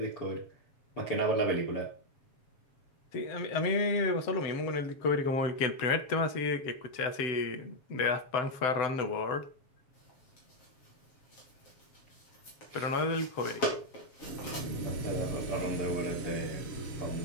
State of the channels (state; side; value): late; right; 7.3 ms